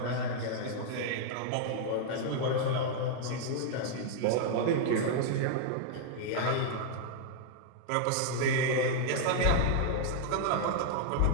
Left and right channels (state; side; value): different; both; correlation 0.00